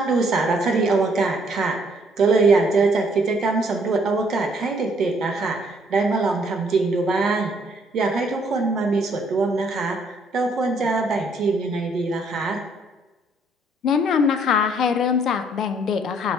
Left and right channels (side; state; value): both; normal; correlation 0.66